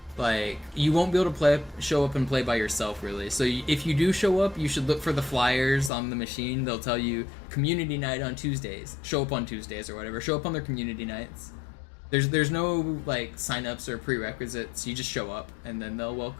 like, you won't be able to show up and play by yourself, really. So if you do show up, you should look for the flyers on the machine. They'll tell you, community night on Tuesdays. Show up on Tuesdays or whatever. Show up on their community nights. There's no, like, sign-ups or prerequisites. You just show up, and then they'll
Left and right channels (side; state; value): right; drops out; at 5.9 s